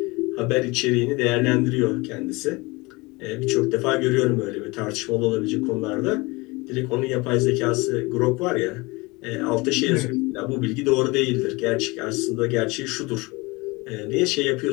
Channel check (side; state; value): right; quieter; 24.5 dB